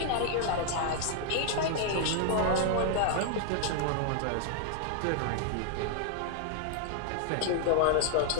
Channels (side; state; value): both; different; correlation 0.00